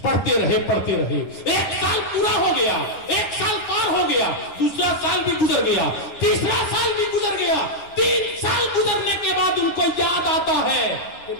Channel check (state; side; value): late; right; 10 ms